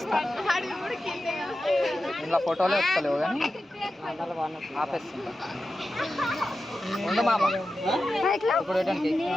ఇలా ఫోటోలు వస్తలేవు కానీ ఆపేస్తుంటా. ఉండు మామ ఇప్పుడు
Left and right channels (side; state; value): both; normal; correlation 0.92